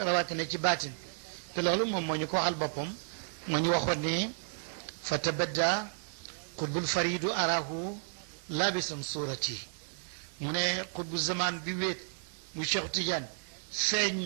rawatina ci baatin te loolu moom moo ñu ko waxal boppam moo ñu waxoon ne fa tabadda qutbul faridu arahu labisan surati mu ne qutbu zaman bi wéet bu Cheikh Tidiane feeñ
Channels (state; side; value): silent; left; digital silence